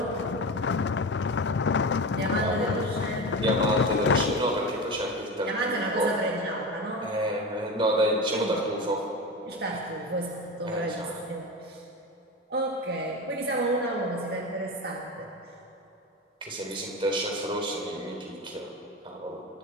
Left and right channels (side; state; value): both; normal; correlation 0.25